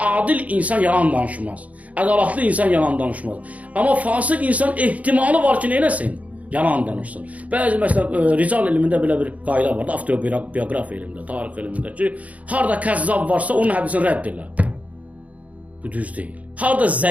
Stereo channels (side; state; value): left; late; 0.069 ms